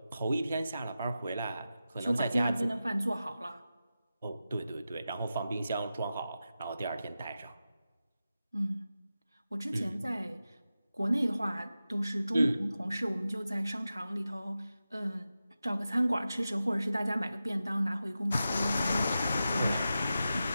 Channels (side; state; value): both; inverted; correlation -0.92